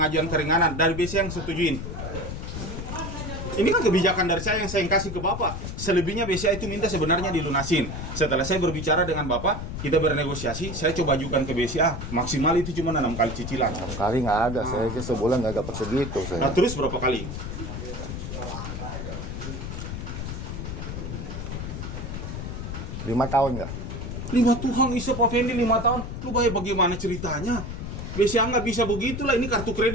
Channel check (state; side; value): noise; left; rumble, 6 dB below the sound